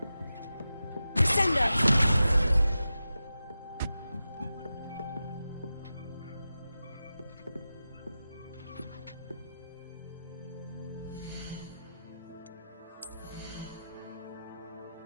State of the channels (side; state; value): both; inverted; correlation -0.93